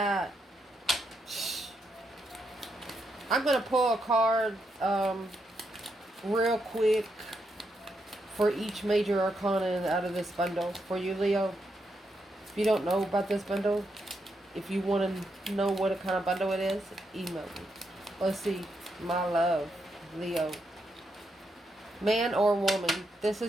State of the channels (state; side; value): normal; both; correlation 0.81